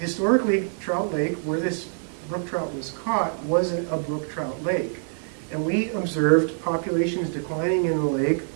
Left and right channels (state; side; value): silent; left; 62 dB below the other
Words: historically, Trout Lake, where this brook trout was caught, wasn't a brook trout lake. And we observed populations declining in the lake,